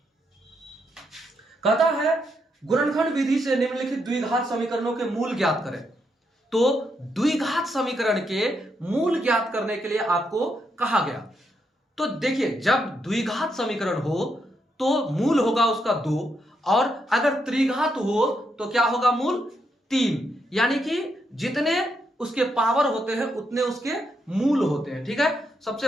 कहता है गुणनखंड विधि से निम्नलिखित द्विघात समीकरणों के मूल ज्ञात करें। तो द्विघात समीकरण के मूल ज्ञात करने के लिए आपको कहा गया। तो देखिए, जब द्विघात समीकरण हो तो मूल होगा उसका 2, और अगर त्रिघात हो तो क्या होगा, मूल 3। यानी कि जितने उसके पावर होते हैं उतने उसके मूल होते हैं, ठीक है।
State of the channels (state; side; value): normal; both; correlation 0.79